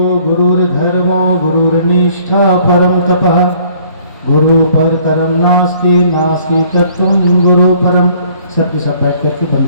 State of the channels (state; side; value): inverted; both; correlation -0.58